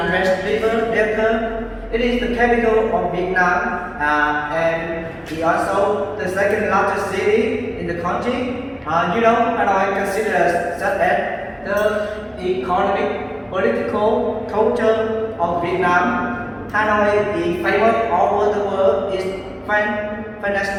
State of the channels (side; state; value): both; identical; correlation 1.00